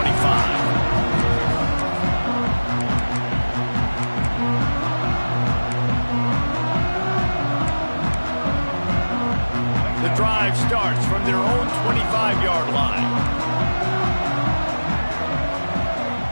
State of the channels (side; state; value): both; inverted; correlation -1.00